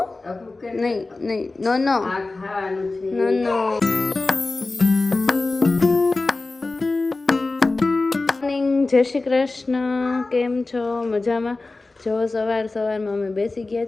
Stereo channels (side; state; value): right; quieter; 3.4 dB